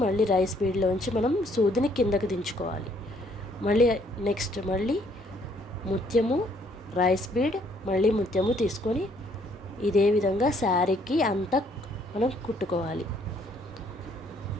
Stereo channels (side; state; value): both; normal; correlation 0.65